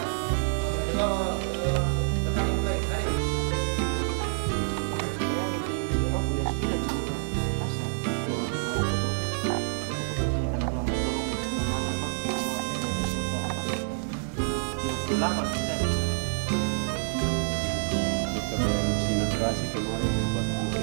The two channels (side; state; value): left; silent; 60 dB below the other